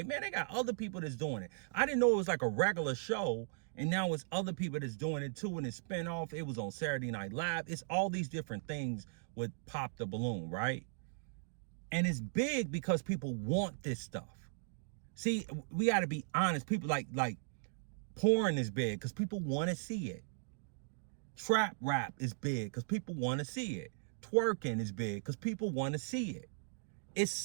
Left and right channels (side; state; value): left; silent; digital silence